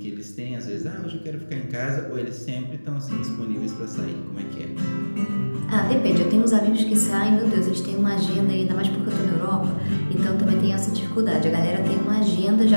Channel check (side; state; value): both; inverted; correlation -1.00